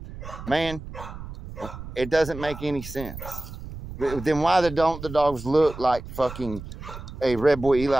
man, it doesn't make any sense. Then why don't the dogs look like fucking a Red Boy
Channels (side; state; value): right; noise; rumble, 12 dB below the sound